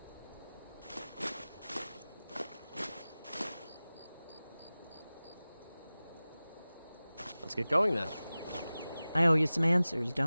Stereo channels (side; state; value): both; inverted; correlation -0.97